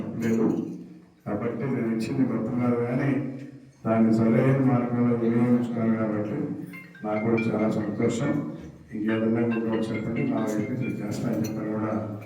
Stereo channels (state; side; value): identical; both; correlation 1.00